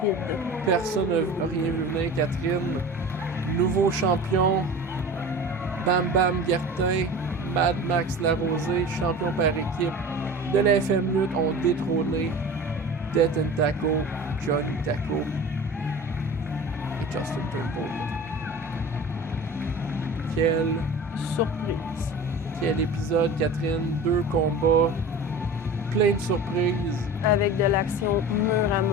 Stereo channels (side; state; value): both; normal; correlation 0.36